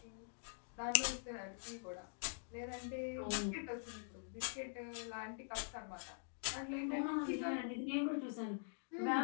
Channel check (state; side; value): silent; right; digital silence